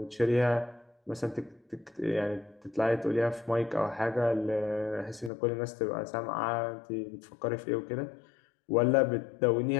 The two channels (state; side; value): drops out; right; at 5.3 s